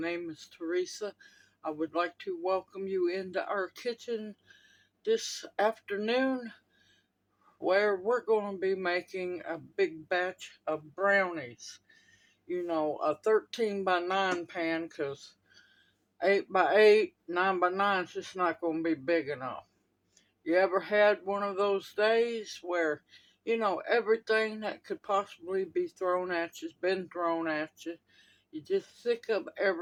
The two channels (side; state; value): both; identical; correlation 1.00